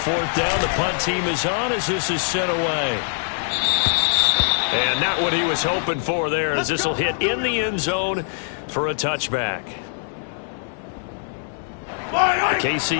down, the punt team is on as this is sent away. And not what he was hoping for there, as this will hit in the end zone for a touchback. The KC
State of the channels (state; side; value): silent; right; 64 dB below the other